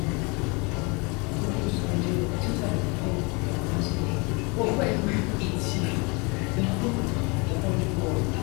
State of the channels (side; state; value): right; quieter; 29.5 dB